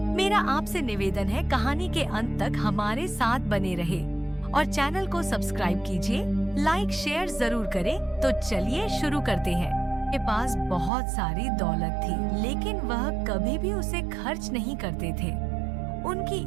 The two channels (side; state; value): left; drops out; at 10.9 s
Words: मेरा आपसे निवेदन है, कहानी के अंत तक हमारे साथ बने रहे और चैनल को सब्सक्राइब कीजिए, लाइक शेयर जरूर करें। तो चलिए शुरू करते हैं। के पास बहुत सारी दौलत थी, लेकिन वह कभी भी उसे खर्च नहीं करते थे।